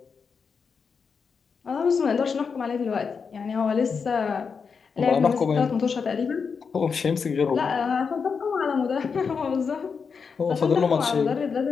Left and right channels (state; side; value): quieter; right; 5.7 dB